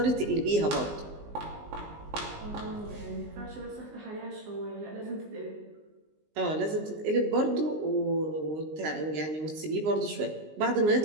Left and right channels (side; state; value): left; late; 19 ms